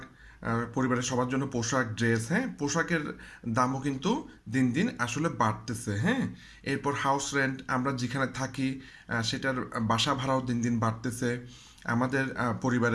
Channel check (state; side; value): identical; both; correlation 1.00